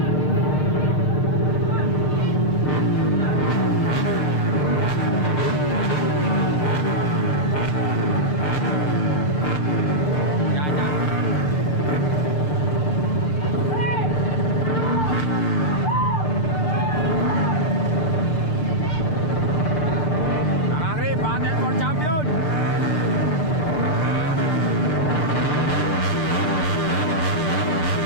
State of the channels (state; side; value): late; right; 6.6 ms